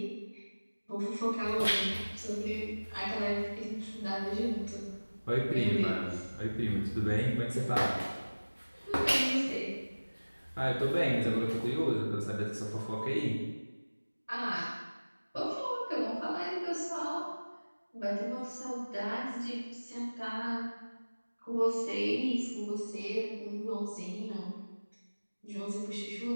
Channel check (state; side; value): inverted; both; correlation -1.00